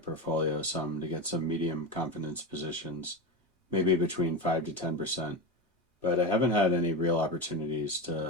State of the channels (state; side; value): normal; both; correlation 0.21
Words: some to get some medium confidence positions, maybe between 5 to 10%, but I haven't had any real opportunities